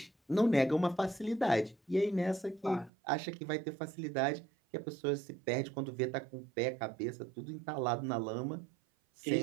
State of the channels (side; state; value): left; drops out; at 2.9 s